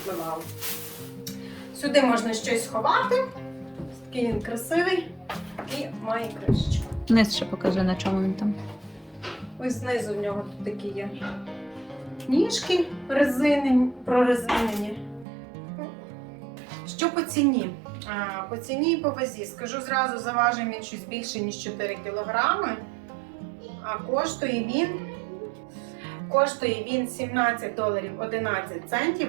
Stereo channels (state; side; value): drops out; left; at 15.2 s